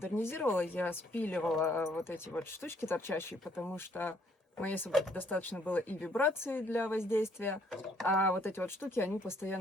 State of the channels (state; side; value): normal; both; correlation 0.66